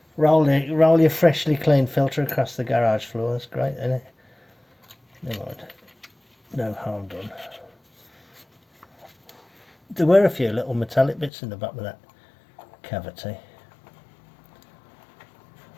Roll your freshly cleaned filter across the garage floor. That's great, isn't it? Never mind. No harm done. There were a few little metallic bits in the bottom of that cavity.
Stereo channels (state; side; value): drops out; right; at 11.3 s